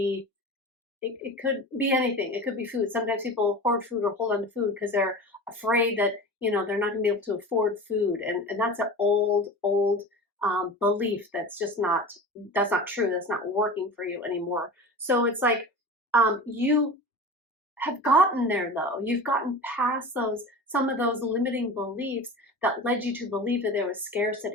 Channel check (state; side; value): normal; both; correlation 0.33